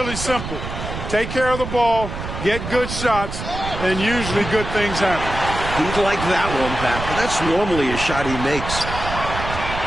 simple. Take care of the ball, get good shots, and usually good things happen. He'd like that one back. That's normally a shot he makes.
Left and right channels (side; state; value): right; noise; rumble, 7 dB below the sound